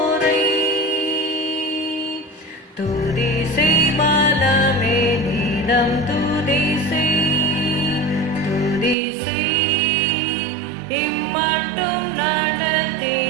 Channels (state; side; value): drops out; left; at 9.0 s